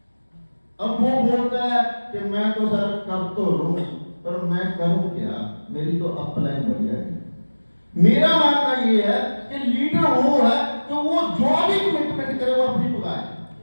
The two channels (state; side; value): inverted; both; correlation -1.00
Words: अब वो बोलता है कि मैं तो सर कर तो लूं, पर मैं करूं क्या, मेरी तो अपलाइन बढ़िया है। मेरा मानना ये है कि लीडर वो है तो वो जो भी कमिटमेंट करे वो अपनी पुगाए।